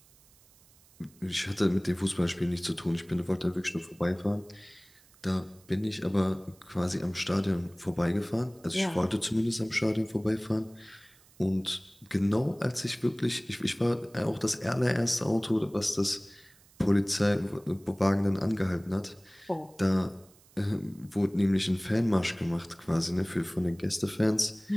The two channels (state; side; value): noise; right; hiss, 28 dB below the sound